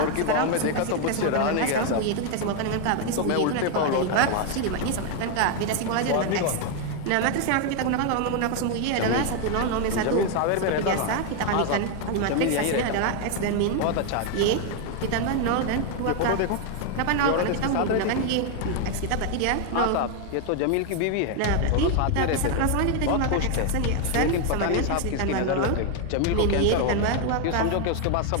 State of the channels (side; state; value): both; different; correlation 0.01